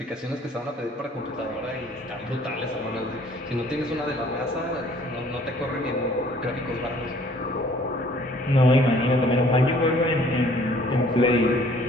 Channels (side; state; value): both; normal; correlation 0.57